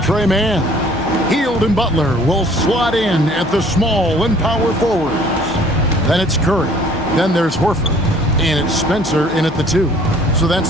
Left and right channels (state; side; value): normal; both; correlation 0.55